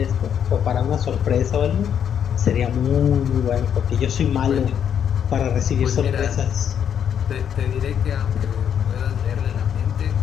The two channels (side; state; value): right; quieter; 8.6 dB